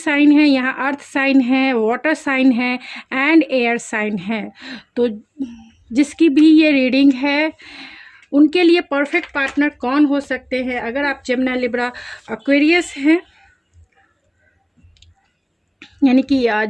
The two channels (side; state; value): both; identical; correlation 1.00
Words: है यहाँ, अर्थ साइन है, वाटर साइन है एंड एयर साइन है, तो जिसकी भी ये रीडिंग है उनके लिए परफेक्ट पार्टनर कौन हो सकते हैं। अगर आप जमुना, लिब्रा, एक्वेरियस हैं, यानी कि